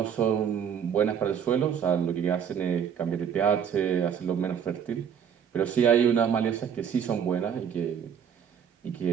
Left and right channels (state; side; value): quieter; left; 8.0 dB